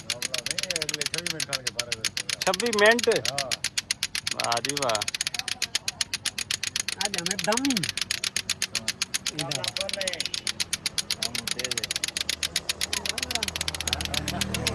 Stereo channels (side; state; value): both; identical; correlation 1.00